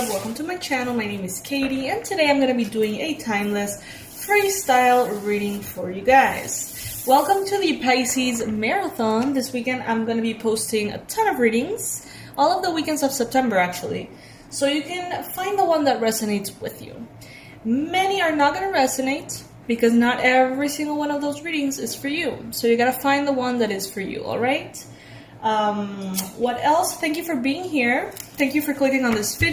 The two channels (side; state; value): both; identical; correlation 1.00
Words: Welcome to my channel. My name is Katie, and today I'm going to be doing a timeless freestyle reading for you guys. Welcome to the Pisces Marathon. This weekend I'm going to be posting a ton of readings, all of the weekends of September actually, so you can find the one that resonates with you. Many are not going to resonate because not every single one of those readings is for you, so you got to find the one that is for you, alright? What else? Thank you for being here. Thank you for clicking on this